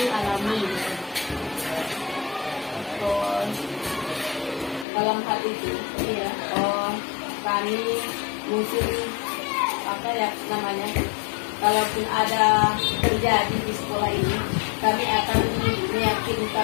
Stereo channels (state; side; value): drops out; right; at 4.9 s